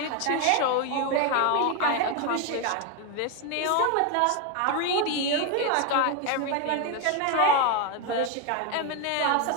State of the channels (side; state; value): both; different; correlation 0.01